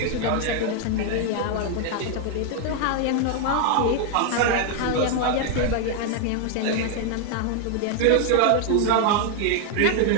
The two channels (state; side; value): different; both; correlation 0.00